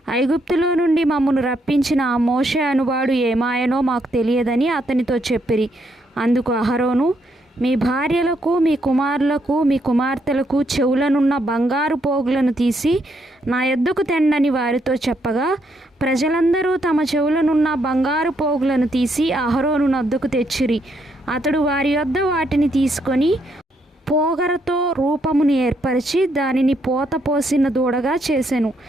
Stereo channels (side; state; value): both; normal; correlation 0.75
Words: ఐగుప్తులో నుండి మమ్మను రప్పించిన ఆ మోషే అనువాడు ఏమాయనో మాకు తెలియదని అతనితో చెప్పిరి. అందుకు అహరోను, మీ భార్యలకు, మీ కుమారులకు, మీ కుమార్తెలకు చెవులనున్న బంగారు పోగులను తీసి నా యొద్దకు తెండని వారితో చెప్పగా, ప్రజలందరూ తమ చెవులనున్న బంగారు పోగులను తీసి అహరోను నొద్దకు తెచ్చిరి. అతడు వారి యొద్ద వాటిని తీసుకొని పోగరతో రూపమును ఏర్పరిచి దానిని పోత పోసిన దూడగా చేసెను.